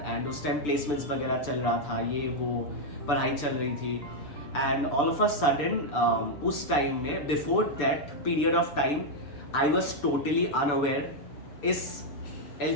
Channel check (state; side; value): late; right; 6.8 ms